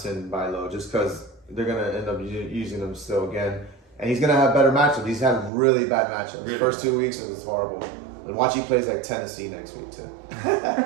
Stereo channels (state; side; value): drops out; left; at 5.5 s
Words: buy low just because they're going to end up using them still again. And he's going to have better matchups. He's had really bad matchups. Really? First 2 weeks, it was horrible. And watch he plays like Tennessee next week, too.